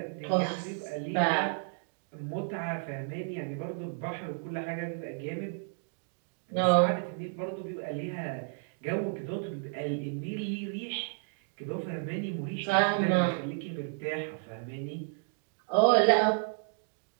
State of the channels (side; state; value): left; silent; 56 dB below the other